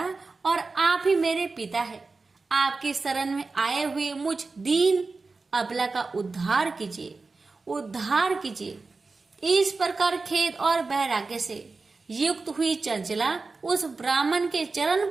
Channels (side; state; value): left; quieter; 3.9 dB